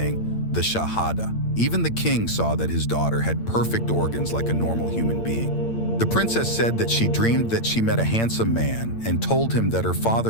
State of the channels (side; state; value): right; late; 8.8 ms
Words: the Shahada. Even the king saw that his daughter had perfect organs like a normal human being. The princess said that she dreamed that she met a handsome man and told him that her